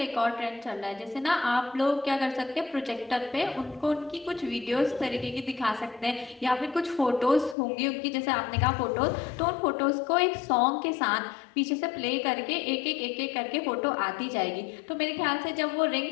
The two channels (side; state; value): right; drops out; at 7.6 s